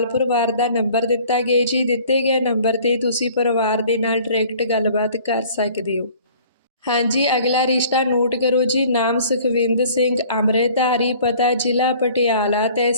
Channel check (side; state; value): both; inverted; correlation -0.51